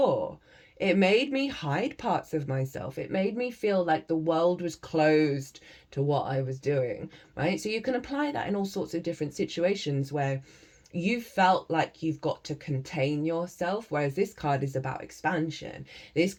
It made me hide parts of myself. It made me feel like the world was closed to what I was doing, right? So you can apply that in all sorts of different situations where you felt like you've got to contain yourself, whereas this card is about expansion. This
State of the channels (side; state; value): both; identical; correlation 1.00